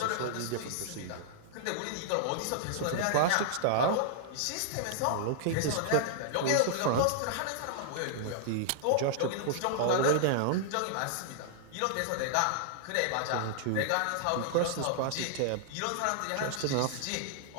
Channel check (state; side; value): different; both; correlation -0.01